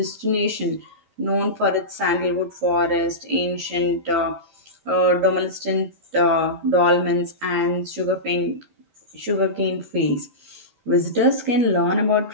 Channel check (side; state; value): left; late; 13 ms